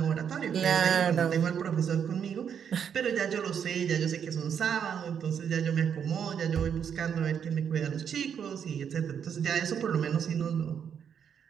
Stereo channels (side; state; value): left; quieter; 7.9 dB